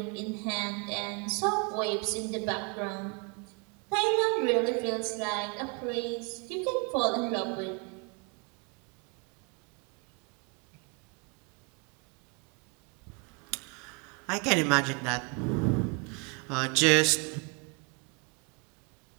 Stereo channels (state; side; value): quieter; left; 33.0 dB